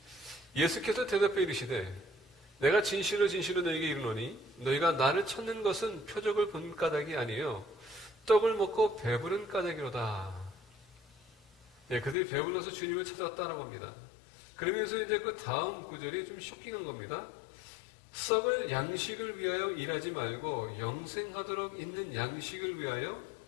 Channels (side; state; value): right; drops out; at 12.2 s